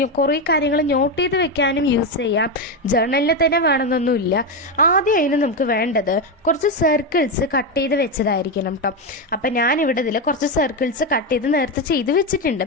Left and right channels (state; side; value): normal; both; correlation 0.10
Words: കുറേ കാര്യങ്ങൾ നോട്ട് ചെയ്ത് വെക്കാനും യൂസ് ചെയ്യാം. ജേർണലിൽ തന്നെ വേണമെന്നൊന്നുമില്ല. ആദ്യം അതിന് നമുക്ക് വേണ്ടത് കുറച്ച് സർക്കിൾസ് കട്ട് ചെയ്ത് വെച്ചതായിരിക്കണം കേട്ടോ. അപ്പം ഞാനിവിടെ ഇതിൽ കുറച്ച് സർക്കിൾസ് കട്ട് ചെയ്ത് നേരത്തെ ചെയ്ത് വെച്ചിട്ടുണ്ട്.